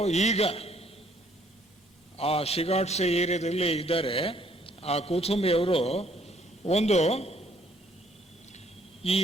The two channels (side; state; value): both; normal; correlation 0.64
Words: ಈಗ ಆ ಶಿಗಾಟ್ಸೆ ಏರಿಯಾದಲ್ಲಿ ಇದ್ದಾರೆ. ಆ ಕುಥುಮಿಯವರು ಒಂದು ಈ